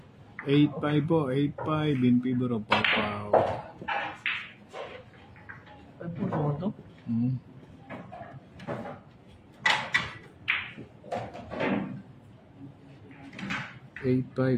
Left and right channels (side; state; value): both; identical; correlation 1.00